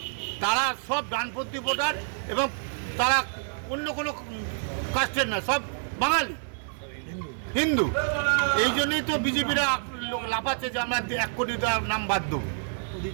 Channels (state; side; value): silent; left; digital silence